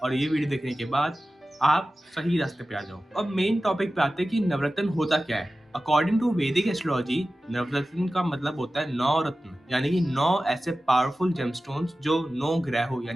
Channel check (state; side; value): normal; both; correlation 0.95